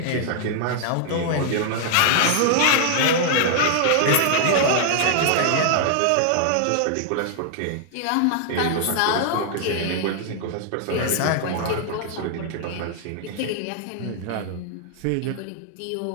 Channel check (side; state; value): both; different; correlation 0.00